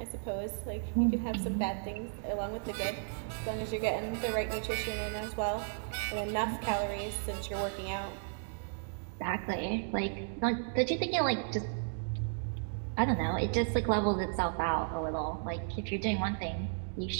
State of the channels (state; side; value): silent; left; digital silence